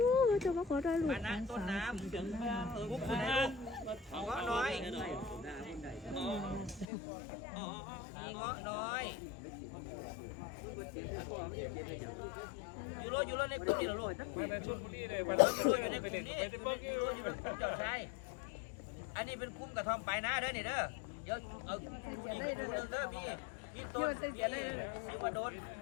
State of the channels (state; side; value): drops out; right; at 6.9 s